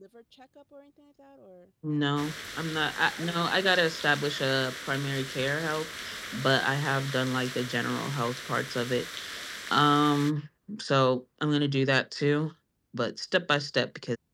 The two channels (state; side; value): identical; both; correlation 1.00